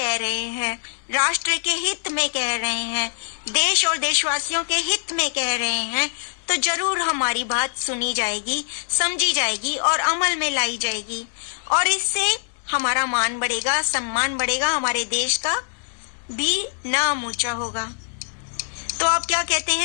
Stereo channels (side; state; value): right; silent; digital silence